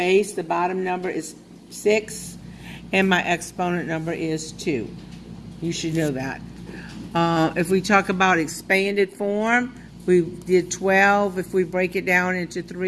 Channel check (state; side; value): identical; both; correlation 1.00